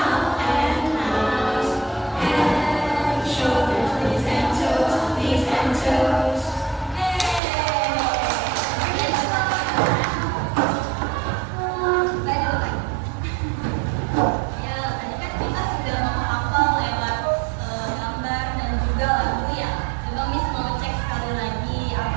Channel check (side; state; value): left; drops out; at 7.4 s